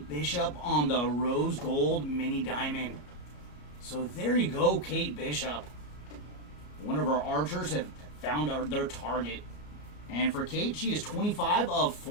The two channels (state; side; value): late; right; 33 ms